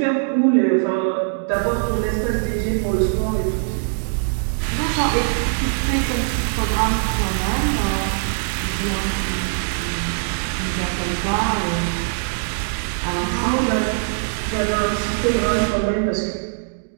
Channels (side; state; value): left; silent; digital silence